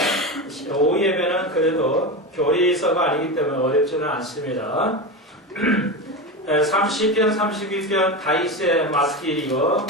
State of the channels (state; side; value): normal; both; correlation 0.21